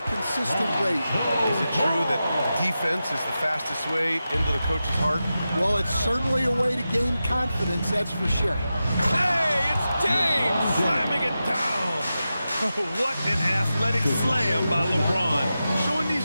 rate. Is it true that defense is the fastest way into the coach's heart? Well, it's certainly a way to gain confidence, that's for sure. Hey, it's James slamming it down. What an athletic slam by LeBron, showing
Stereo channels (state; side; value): inverted; both; correlation -0.92